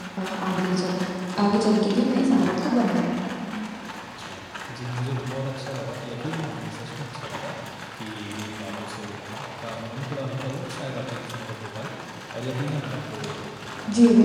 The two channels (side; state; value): both; identical; correlation 1.00